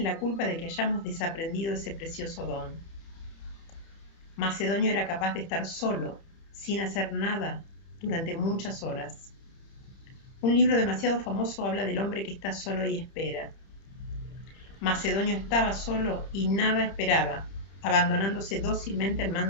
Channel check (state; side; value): late; right; 30 ms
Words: la culpa de que hayamos desaprendido ese precioso don. Macedonio era capaz de estar solo, sin hacer nada, durante muchas horas. Un libro demasiado famoso habla del hombre que está solo y espera. Macedonio estaba solo y nada esperaba, abandonándose dócilmente al